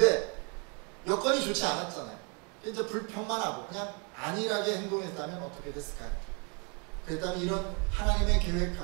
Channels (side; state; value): left; quieter; 34.3 dB